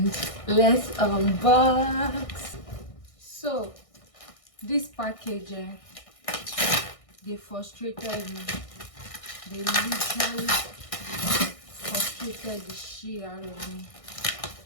let's unbox. So this package, they frustrated me. They literally frustrated the shit out of me.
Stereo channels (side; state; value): right; late; 1.6 ms